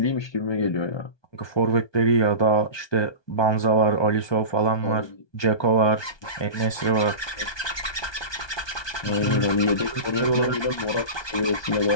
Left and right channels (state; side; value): late; right; 1.2 ms